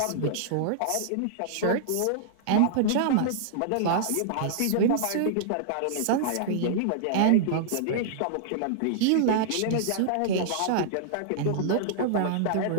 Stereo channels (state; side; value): different; both; correlation -0.01